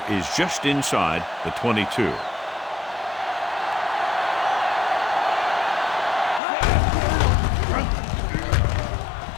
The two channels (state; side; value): drops out; right; at 6.4 s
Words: is just inside the 22.